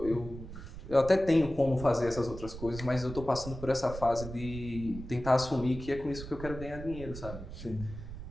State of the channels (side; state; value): right; noise; rumble, 11 dB below the sound